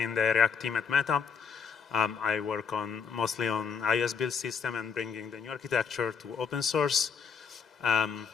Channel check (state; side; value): quieter; right; 6.3 dB